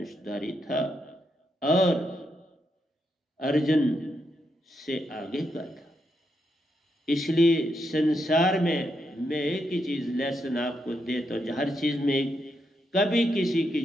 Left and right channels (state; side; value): normal; both; correlation 0.81